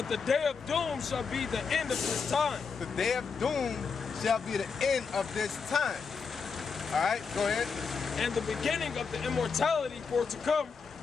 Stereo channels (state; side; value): quieter; right; 5.5 dB